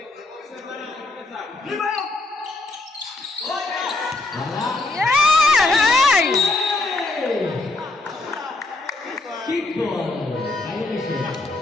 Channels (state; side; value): quieter; right; 3.1 dB